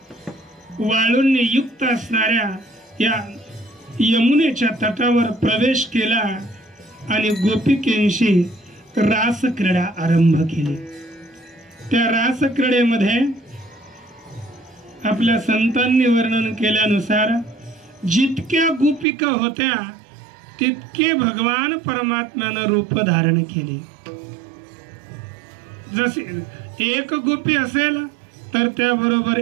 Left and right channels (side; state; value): left; drops out; at 19.1 s